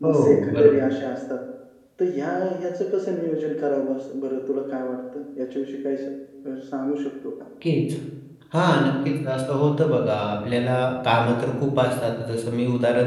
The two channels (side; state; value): both; identical; correlation 1.00